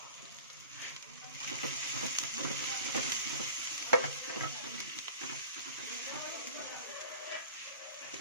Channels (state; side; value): inverted; both; correlation -0.40